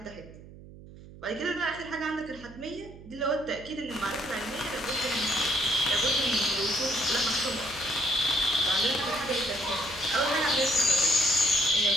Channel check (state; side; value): noise; right; hum, 18 dB below the sound